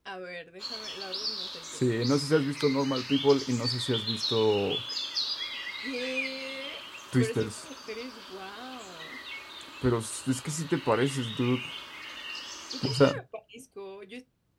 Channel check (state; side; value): identical; both; correlation 1.00